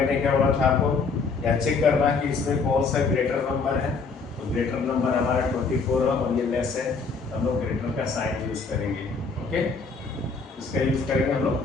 क्या बोला था आपको, यहाँ चेक करना कि इसमें कौन सा ग्रेटर नंबर है, तो ग्रेटर नंबर हमारा 24 है और ये लेस है, हम लोग ग्रेटर का साइन यूज करेंगे। ओके, इसका यूज करेंगे हम लोग,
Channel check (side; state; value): right; quieter; 4.6 dB